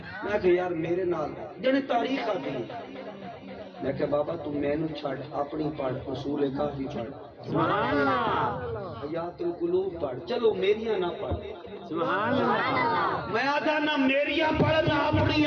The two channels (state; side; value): identical; both; correlation 1.00